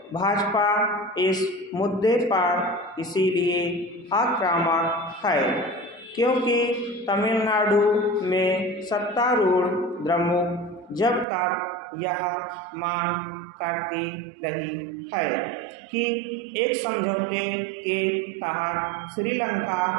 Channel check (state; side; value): drops out; left; at 11.2 s